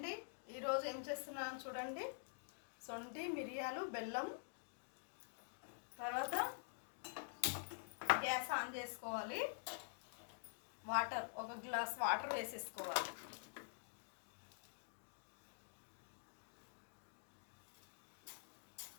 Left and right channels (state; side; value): silent; right; digital silence